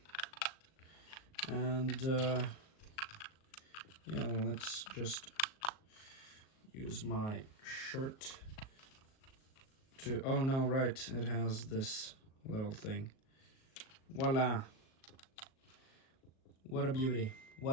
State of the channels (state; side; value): late; right; 38 ms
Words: And yeah, let's just use my shirt to... Oh no, right, it has this little thing. Voila! What a beauty.